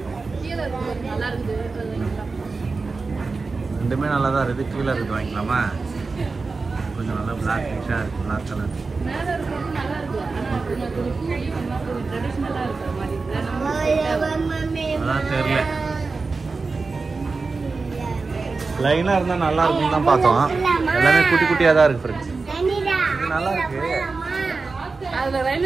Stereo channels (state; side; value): quieter; left; 4.1 dB